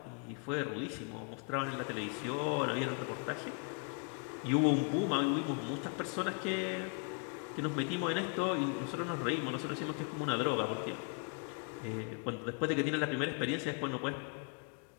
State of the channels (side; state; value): right; quieter; 34.2 dB